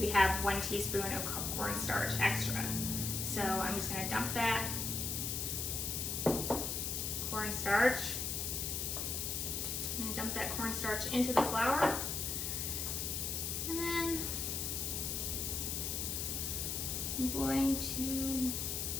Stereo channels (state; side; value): noise; left; hiss, 1 dB below the sound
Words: have 1 teaspoon of cornstarch extra. So I'm just going to dump that cornstarch. I'm going to dump that cornstarch into the flour, and then I'm going to